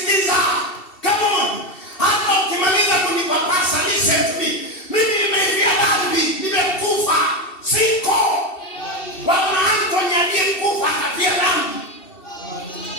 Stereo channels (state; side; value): late; right; 2.7 ms